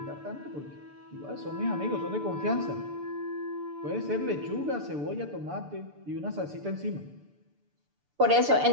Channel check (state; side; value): late; left; 6.8 ms